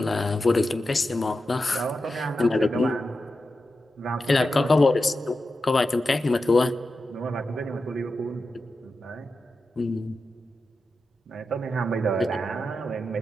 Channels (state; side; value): normal; both; correlation 0.90